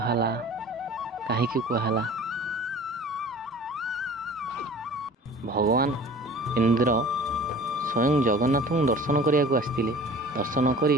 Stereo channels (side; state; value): both; normal; correlation 0.44